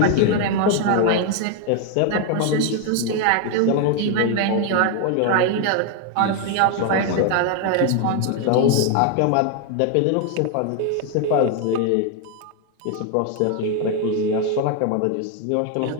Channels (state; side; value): different; both; correlation 0.01